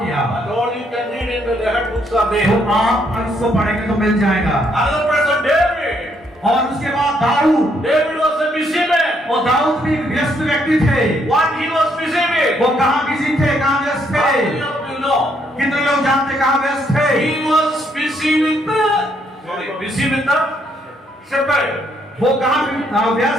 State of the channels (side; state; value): both; normal; correlation 0.72